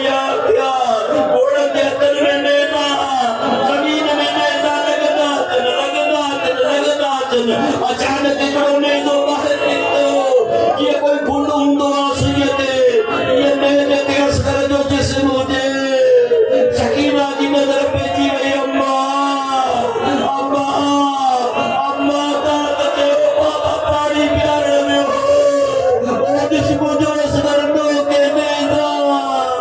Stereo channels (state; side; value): identical; both; correlation 1.00